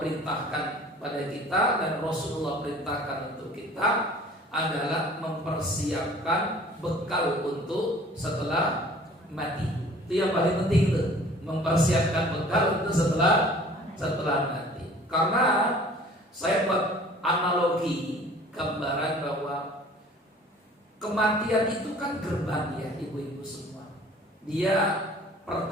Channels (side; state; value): both; normal; correlation 0.49